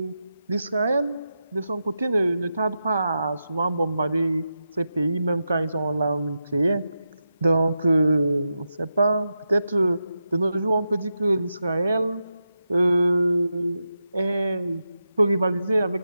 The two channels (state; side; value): inverted; both; correlation -0.89